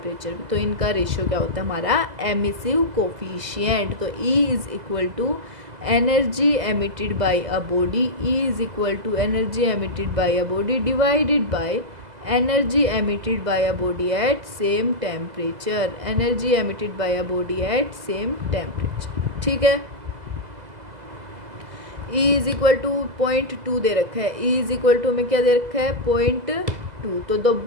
तो इनका रेशियो क्या होता है हमारा, एमिसिव कोफिशिएंट। तो E is equal to energy emitted by a body, E is equal to energy emitted by a body divided by energy emitted by a body at same temperature, energy emitted by a body at same temperature, ठीक है। E is equal to 0.2 दे रखा है, E is equal to में क्या दे रखा है, 0.2। तो द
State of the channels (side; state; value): left; late; 2.0 ms